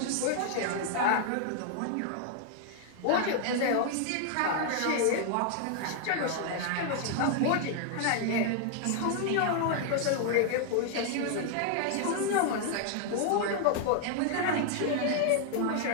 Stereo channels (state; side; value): different; both; correlation 0.00